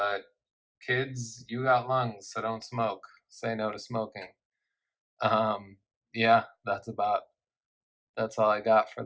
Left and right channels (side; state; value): both; identical; correlation 1.00